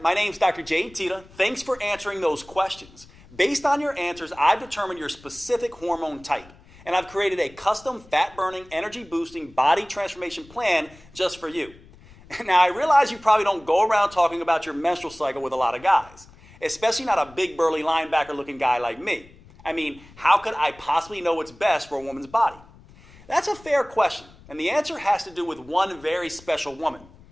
my name's Dr. Jay Tita. Thanks for answering those questions. Based on your answers, I've determined your specific hormone type, and I've created a custom fat-burning, energy-boosting body transformation plan just for you. Now, I realize you probably don't go around talking about your menstrual cycle with a lot of guys, especially not a big burly linebacker-looking guy like me. I mean, how could I possibly know what's best for a woman's body? That's a fair question, and the answer has to do with one very special woman,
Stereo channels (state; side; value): noise; left; rumble, 24 dB below the sound